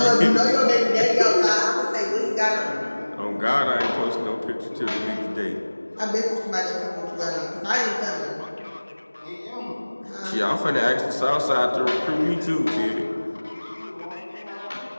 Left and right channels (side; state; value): both; inverted; correlation -1.00